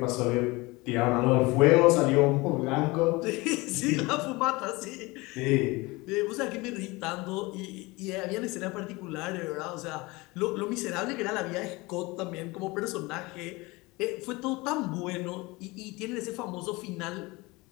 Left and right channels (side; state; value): right; quieter; 23.3 dB